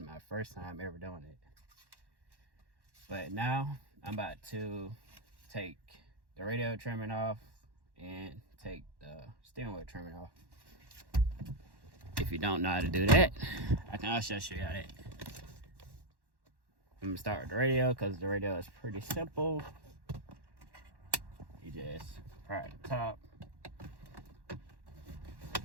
first time ever doing it. But now I'm about to take the radio trimming off and take the steering wheel trimming off. If you don't know how to do that, I can also show you how that. I'm gonna start with the radio because the radio is pretty simple. You just pry the top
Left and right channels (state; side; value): late; left; 1.1 ms